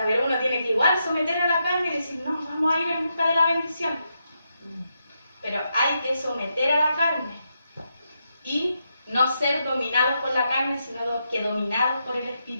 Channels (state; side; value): inverted; both; correlation -0.83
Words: pero uno tiene que igual someter a la carne y decir, no, vamos a ir en busca de la bendición. Pero hay que someter a la carne y no ser dominados por la carne, sino que dominados por el